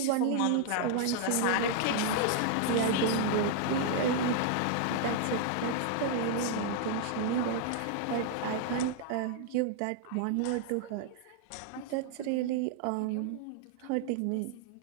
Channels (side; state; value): both; different; correlation 0.00